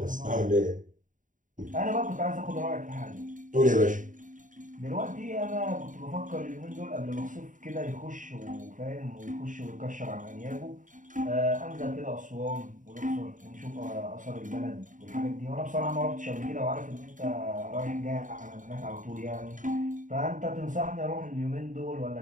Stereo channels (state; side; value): late; left; 0.38 ms